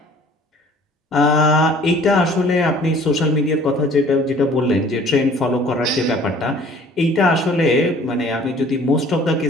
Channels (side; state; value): both; normal; correlation 0.52